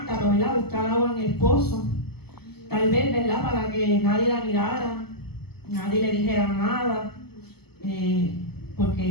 ¿verdad? Buscar agua en el pozo. Tal vez, ¿verdad? Para que nadie la mirara, nadie le dijera nada,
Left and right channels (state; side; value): late; right; 0.96 ms